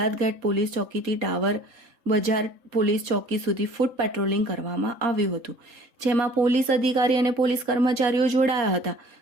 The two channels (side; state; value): left; late; 3.7 ms